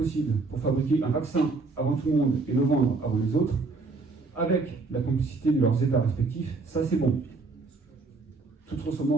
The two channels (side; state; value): left; quieter; 3.8 dB